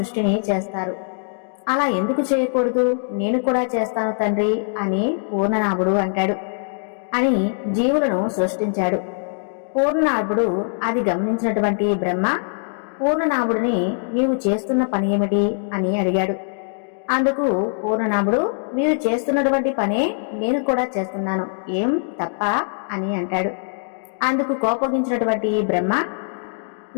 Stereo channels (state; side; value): silent; right; digital silence